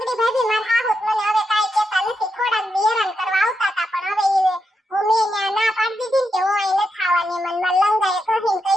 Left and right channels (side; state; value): both; normal; correlation 0.84